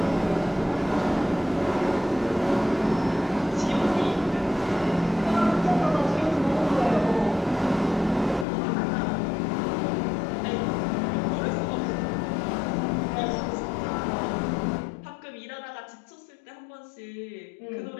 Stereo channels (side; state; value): right; drops out; at 8.5 s